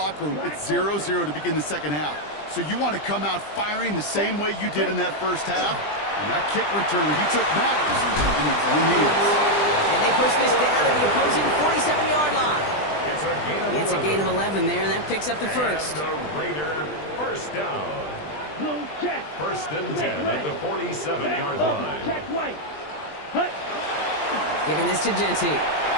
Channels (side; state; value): right; late; 20 ms